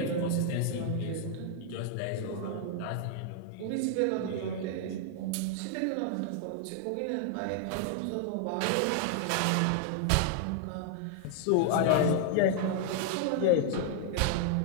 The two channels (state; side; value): different; both; correlation 0.00